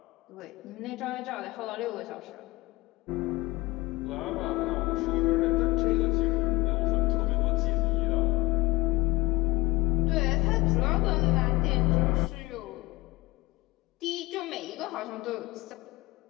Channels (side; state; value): right; quieter; 21.4 dB